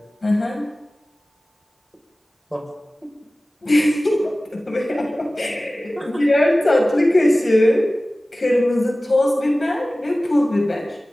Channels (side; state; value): both; normal; correlation 0.97